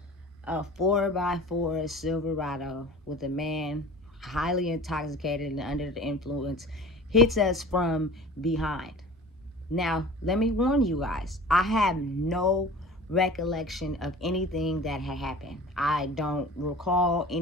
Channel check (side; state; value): both; normal; correlation 0.40